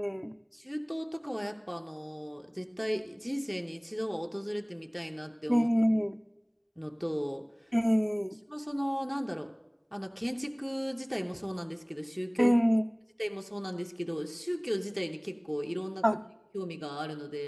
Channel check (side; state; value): both; identical; correlation 1.00